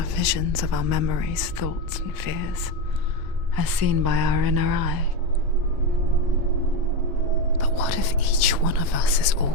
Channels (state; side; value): late; left; 1.5 ms